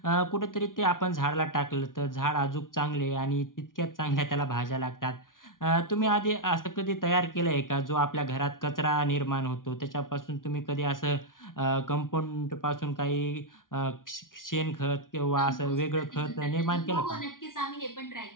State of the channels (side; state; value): right; late; 0.89 ms